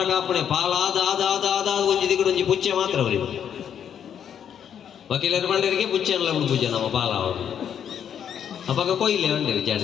ಕಾಪಣೆ ಪಾಲಾದ ಆದ ಆದ ಆದ ಒಂಜಿ ದಿಗುಡು ಒಂಜಿ ಪುಚ್ಚೆ ಮಾತ್ರ ಅವರಿಗೆ ವಕೀಲರ ಬಂಡರಿಗೆ ಪುಚ್ಚೆ ಅಲ್ಲ ಉಂಡು ಪೂಜೆ ನಮ್ಮ ಪಾಲ ಅವರು ಅವಾಗ ಕೊಯ್ಲೆ ಬಂಡಿರಿ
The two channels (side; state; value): right; quieter; 8.8 dB